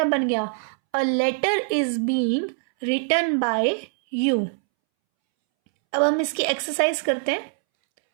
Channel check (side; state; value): left; silent; 63 dB below the other